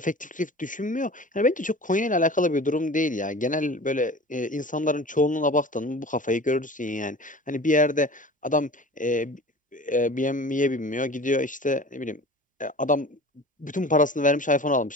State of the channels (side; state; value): both; normal; correlation 0.39